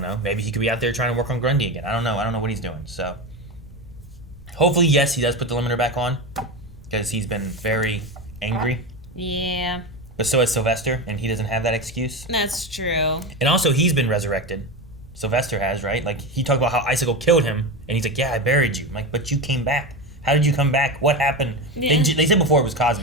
Maybe he could be out there trying to work on Grundy again. I don't know what he's doing. So hopefully, yes, he does put the limiter back on, because he's been very angry. Yeah. But so has Sylvester, and he doesn't have that excuse. That's true. And also, he's been resurrected. Sylvester has, right? Like, he talked about how Icicle killed him, and he's like, yeah, I buried you. I'm like, but you came back. How did you come back? What happened? Yeah. They said before it was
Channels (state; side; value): normal; both; correlation 0.20